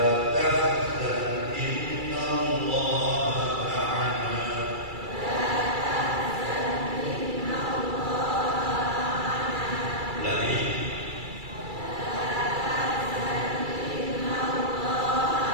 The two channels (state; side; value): late; left; 2.3 ms